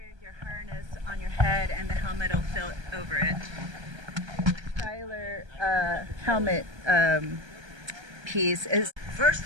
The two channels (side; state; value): left; late; 1.3 ms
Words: your harness on your head head and the helmet will fit over it. Tyler helmet piece is. First